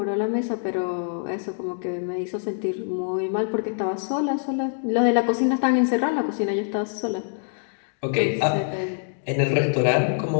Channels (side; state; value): right; silent; digital silence